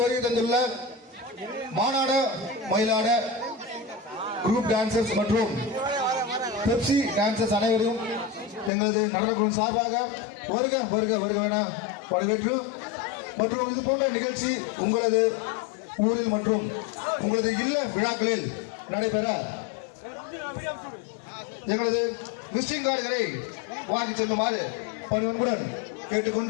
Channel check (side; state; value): right; drops out; at 8.7 s